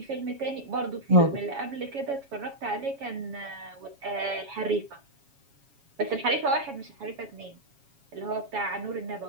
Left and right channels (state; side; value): late; left; 7.2 ms